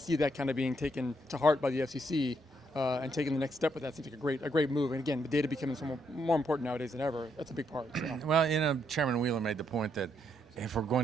that kind of being taken to heart by the FCC and taking the next step with that seems like a great move. And again, the data becoming so more important nowadays than ever. That's a big part. So. Well, Chairman Wheeler made the point that if we're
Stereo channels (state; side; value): normal; both; correlation 0.76